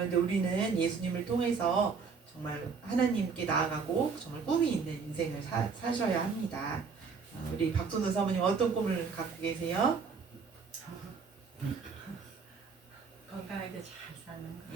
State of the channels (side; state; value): left; quieter; 5.3 dB